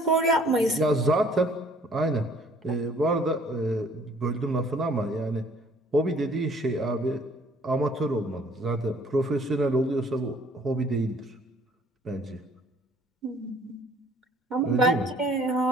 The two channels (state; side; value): normal; both; correlation 0.57